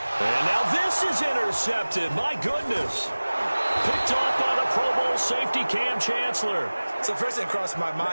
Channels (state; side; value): inverted; both; correlation -1.00